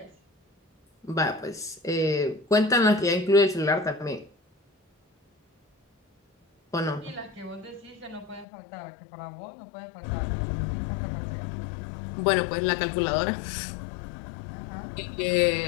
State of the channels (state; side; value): drops out; right; at 8.5 s